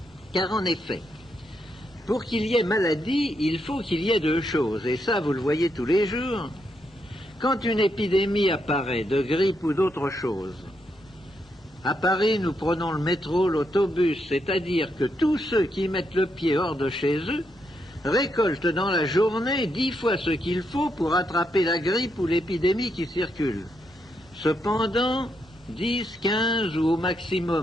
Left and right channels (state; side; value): normal; both; correlation 0.80